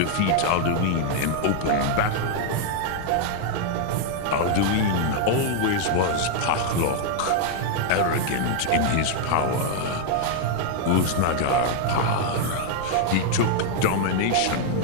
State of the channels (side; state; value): both; different; correlation 0.00